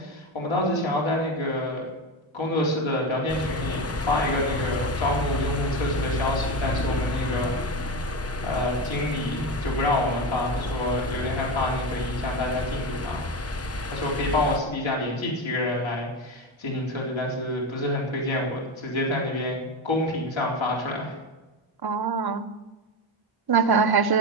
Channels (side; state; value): both; normal; correlation 0.19